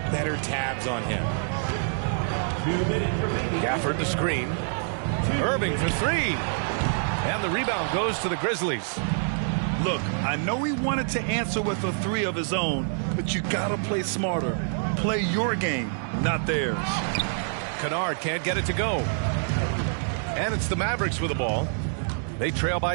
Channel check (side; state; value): left; silent; digital silence